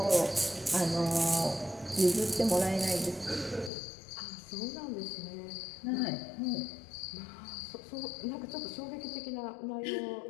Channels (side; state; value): right; drops out; at 3.7 s